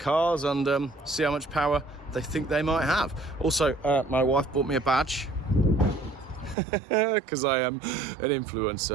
and see how much power they think they might have. Also, my wife bought me a badge because I am an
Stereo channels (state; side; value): drops out; left; at 6.6 s